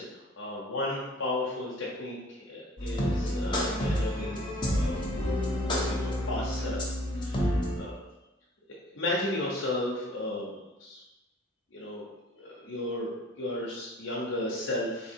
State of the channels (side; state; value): both; normal; correlation 0.51